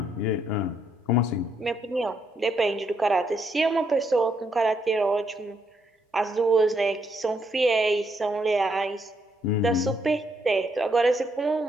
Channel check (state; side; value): normal; both; correlation 0.75